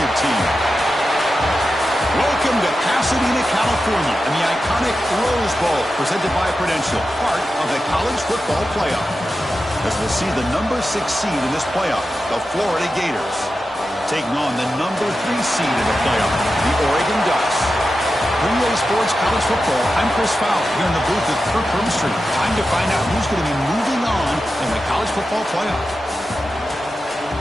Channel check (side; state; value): both; normal; correlation 0.91